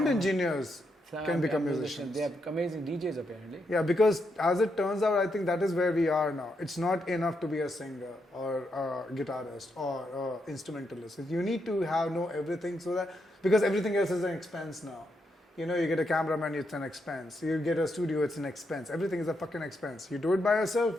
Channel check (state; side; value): normal; both; correlation 0.81